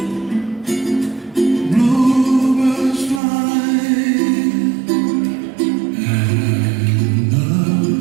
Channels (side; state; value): left; drops out; at 3.2 s